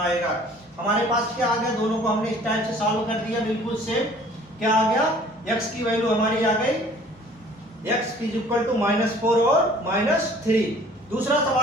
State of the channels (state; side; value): normal; both; correlation 0.52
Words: आएगा। हमारे पास क्या आ गया, दोनों को हमने इस टाइप से सॉल्व कर दिया, बिल्कुल सेम। क्या आ गया, x की वैल्यू हमारी आ गई x इज इक्वल टू -4 और -3। दूसरा